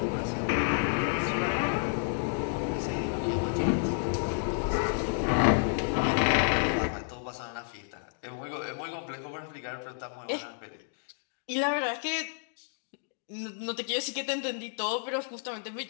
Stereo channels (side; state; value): right; silent; digital silence